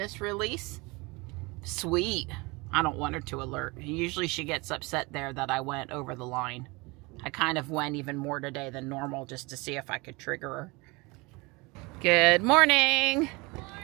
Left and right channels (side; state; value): left; quieter; 25.5 dB